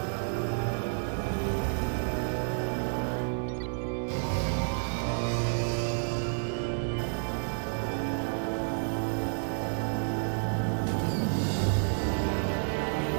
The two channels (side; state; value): left; silent; digital silence